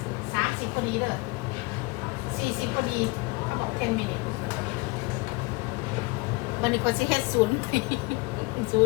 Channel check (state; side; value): quieter; right; 25.8 dB